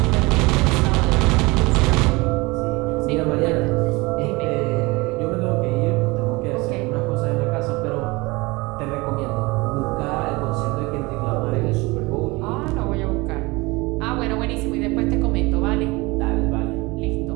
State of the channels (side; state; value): left; quieter; 23.8 dB